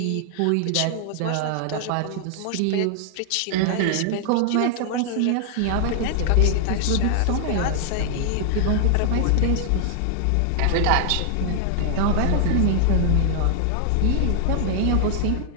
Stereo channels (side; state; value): both; different; correlation 0.00